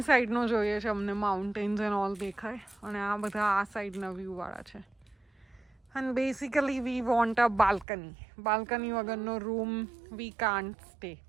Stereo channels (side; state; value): left; drops out; at 7.9 s